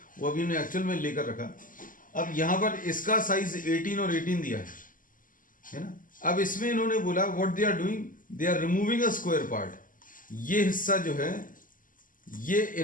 वो अभी हमने एक्चुअल में लेकर रखा। अब यहाँ पर इसका साइज 18 और 18 दिया है ना। अब इसमें इन्होंने बोला what they are doing, they are removing a square part. ये हिस्सा जो है ये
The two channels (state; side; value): late; right; 0.39 ms